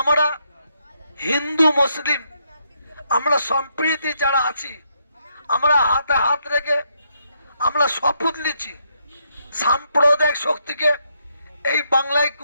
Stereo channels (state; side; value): inverted; both; correlation -0.77